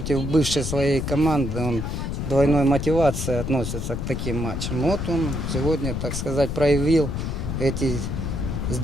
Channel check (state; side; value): noise; left; rumble, 3 dB below the sound